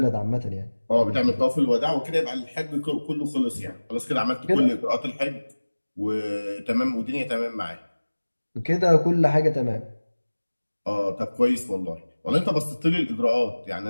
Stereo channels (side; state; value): both; inverted; correlation -1.00